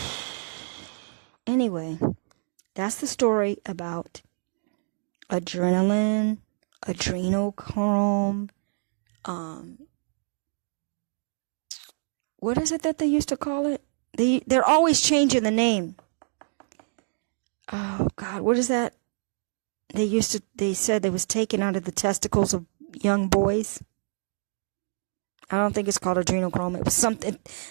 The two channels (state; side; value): silent; left; digital silence